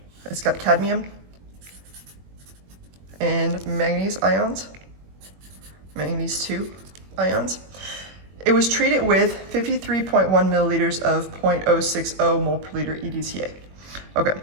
It's got cadmium and manganese ions, manganese 2 ions. It was treated with 53.1 milliliters of 0.060 mole per liter EDTA. Okay,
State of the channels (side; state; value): left; late; 21 ms